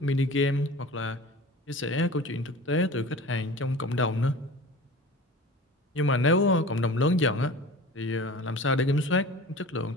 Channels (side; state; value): both; normal; correlation 0.38